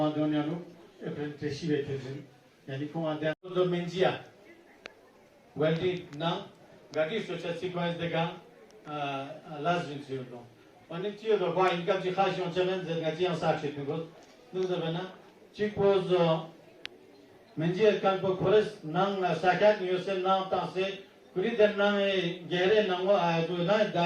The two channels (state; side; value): identical; both; correlation 1.00